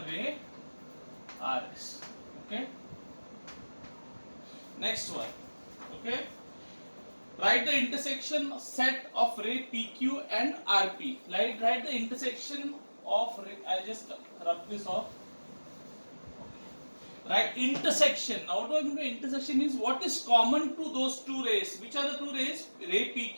ray RS. Okay. Next one. Okay. Write the intersection set of ray PQ and RP. Write the intersection of ray. I'll just rub this off. Right, intersection. Now what do I mean by intersection is what is common to those two rays. Which are the two rays? Ray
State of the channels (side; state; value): both; inverted; correlation -1.00